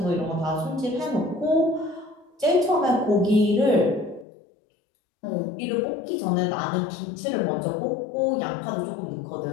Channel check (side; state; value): right; drops out; at 4.2 s